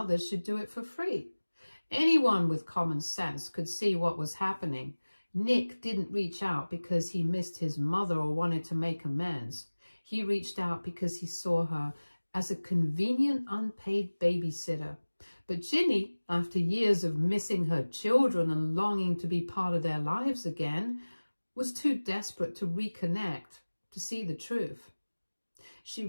should do it for free. Anyone with common sense could see what was happening. Nick didn't reach out because he missed his mother or wanted to make amends. He reached out because he saw her as a convenient, unpaid babysitter. But Ginny, after years of missing her children and longing to be part of their lives again, was too desperate to reconnect, to see the truth. She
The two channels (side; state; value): both; inverted; correlation -1.00